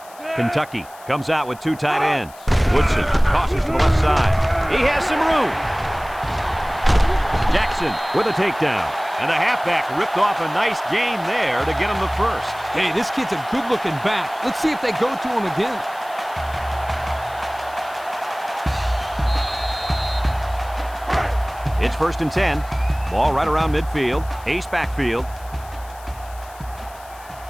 Kentucky comes out with 2 tight ends. Woodson tosses to the left side. He has some room. Jackson with a takedown. And the halfback ripped off a nice gain there to get him the first. Hey, this kid's a good-looking back. Let's see if they go to him again. It's first and 10. Ball right around midfield. Ace backfield.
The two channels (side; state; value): left; noise; hiss, 22 dB below the sound